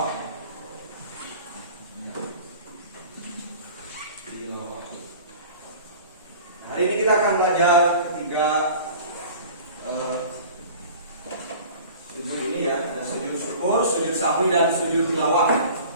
Hari ini kita akan belajar ketiga sujud ini ya, ada sujud syukur, sujud sahwi dan sujud tilawah.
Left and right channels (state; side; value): inverted; both; correlation -0.43